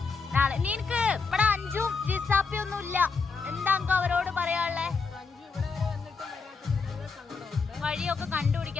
നാളെ നിനക്ക് ഇവിടെ അഞ്ചും ജിസാപ്പി ഒന്നും ഇല്ല. എന്താ അവരോട് പറയാനുള്ളേ? വഴിയൊക്കെ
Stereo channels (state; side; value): quieter; right; 4.8 dB